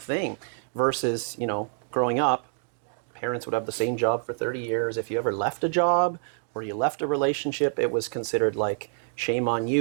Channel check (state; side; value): silent; left; digital silence